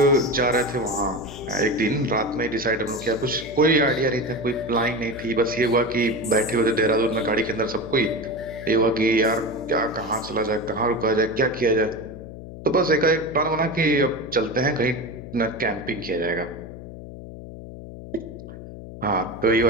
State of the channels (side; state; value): left; noise; hum, 13 dB below the sound